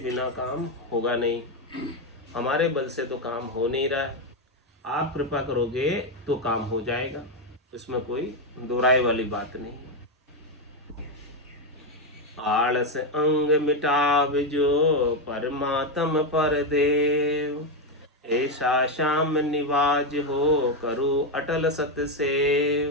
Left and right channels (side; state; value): both; normal; correlation 0.06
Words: काम होगा नहीं। हमारे बल से तो काम हो नहीं रहा है, आप कृपा करोगे तो काम हो जाएगा, इसमें कोई दो राय वाली बात नहीं है। आलस अंग मिटाव जो, परमात्म पर देव। ऐसा श्याम निवाज हो, करो अटल